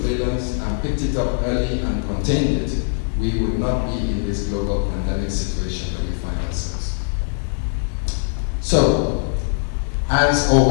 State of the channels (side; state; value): right; silent; digital silence